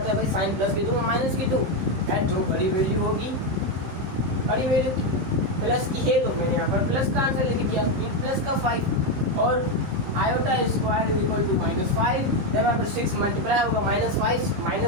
है भाई, साइन प्लस की 2 माइनस की 2, यार जो बड़ी वैल्यू होगी, बड़ी वैल्यू प्लस की है, तो मैंने यहाँ पर प्लस का आंसर लिख दिया, प्लस का 5, और iota square is equal to -5। जब यहाँ पर 6 मल्टीप्लाई होगा -5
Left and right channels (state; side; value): late; left; 15 ms